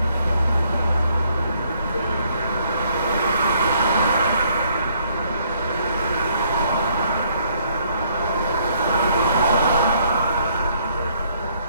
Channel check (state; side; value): inverted; both; correlation -0.67